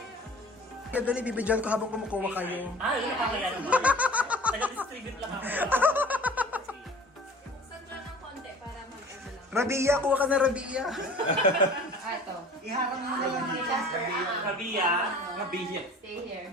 Kaya dali, bibidyan ko habang kumukuha kayo. Ah, yun ang kaya naman. Taga-distribute lang ako. Buksan dyan ng konti para mag-ano lang. Rabia, kuha ka na Rabia. Iharap mo na lang dito. Rabia. Mabihi. Stay here.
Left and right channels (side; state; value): both; normal; correlation 0.45